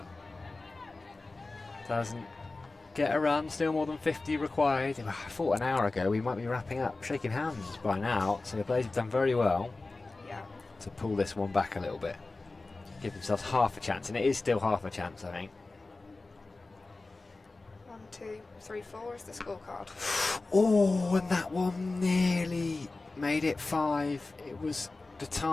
Doesn't get a run, still more than 50 required. I thought an hour ago we might be wrapping up, shaking hands by now, so the Blaze have done very well to pull this one back a little bit. Give themselves half a chance, and it is still half a chance, I think. 1, 2, 3, 4 is the scorecard. Oh, and that one nearly made it 5. It was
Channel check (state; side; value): quieter; right; 3.4 dB